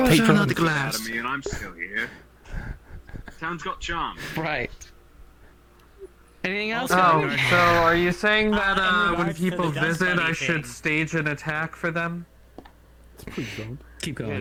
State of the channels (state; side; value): identical; both; correlation 1.00